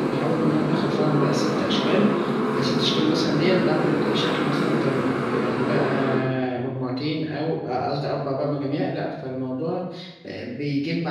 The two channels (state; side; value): identical; both; correlation 1.00